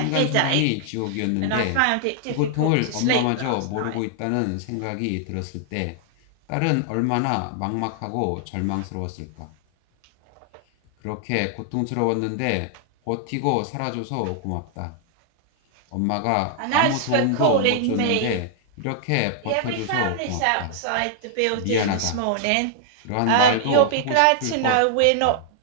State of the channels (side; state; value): both; different; correlation -0.01